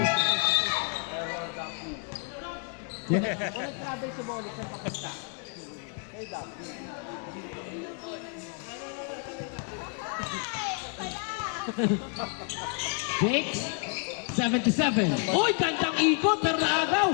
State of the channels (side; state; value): right; quieter; 38.2 dB